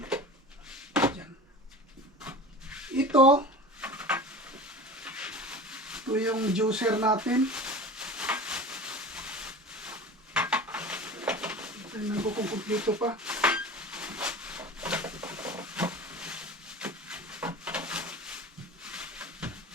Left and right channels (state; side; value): normal; both; correlation 0.35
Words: Ito yung juicer natin. Tingnan ko kung kumpleto pa.